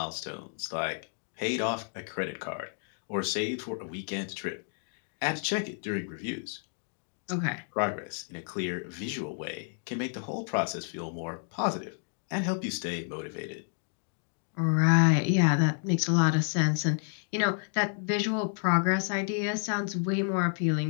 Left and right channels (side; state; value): right; silent; 57 dB below the other